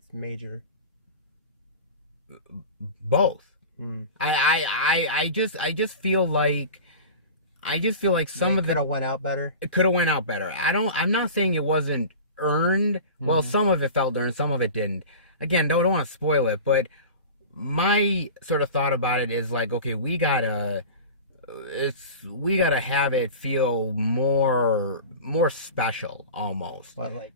major. Both. I just feel like some of could have went out better. It could have went out better. I'm not saying it wasn't earned. Well, some of it felt earned, some of it didn't. Again, don't want to spoil it, but my sort of thought about it is like, okay, we gotta have it feel more special, almost. But like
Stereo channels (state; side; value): inverted; both; correlation -0.34